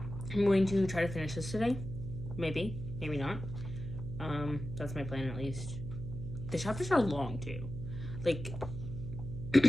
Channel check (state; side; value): noise; right; hum, 7 dB below the sound